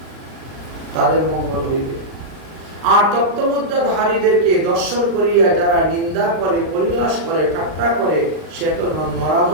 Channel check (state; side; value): late; left; 39 ms